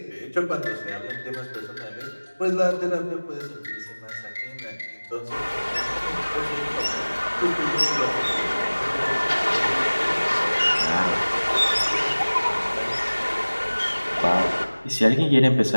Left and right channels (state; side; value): inverted; both; correlation -1.00